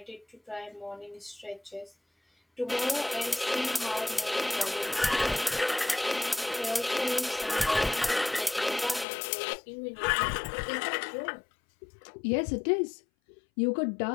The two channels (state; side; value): drops out; right; at 9.1 s